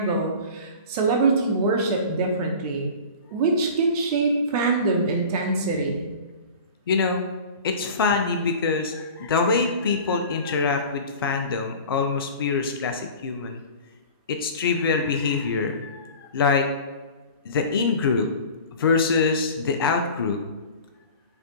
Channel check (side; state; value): both; inverted; correlation -0.39